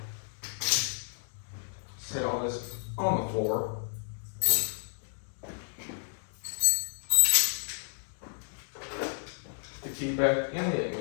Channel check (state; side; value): silent; right; digital silence